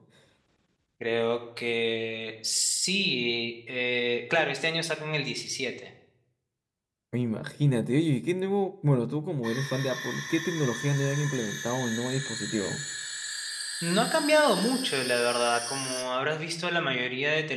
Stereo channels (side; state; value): both; identical; correlation 1.00